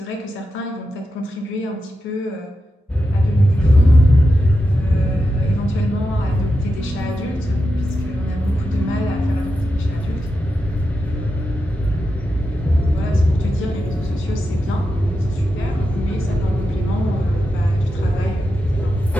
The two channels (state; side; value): normal; both; correlation 0.89